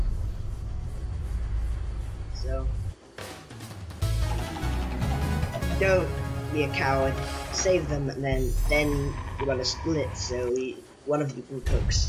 So. Don't be a coward. Save them, and then you want to split. So one of you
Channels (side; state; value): both; identical; correlation 1.00